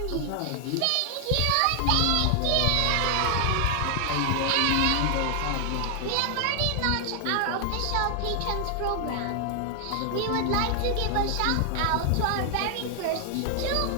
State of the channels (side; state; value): both; different; correlation 0.00